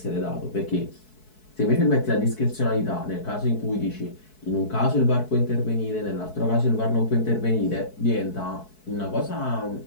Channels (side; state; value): right; late; 4.6 ms